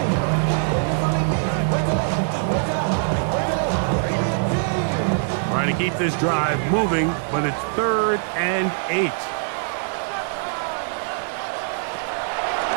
8. Trying to keep this drive moving, but it's 3rd and 8.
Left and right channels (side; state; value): left; silent; digital silence